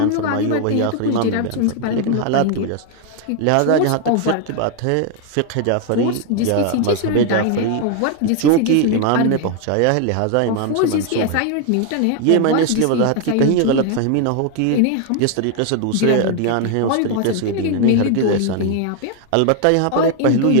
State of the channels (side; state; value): both; different; correlation 0.00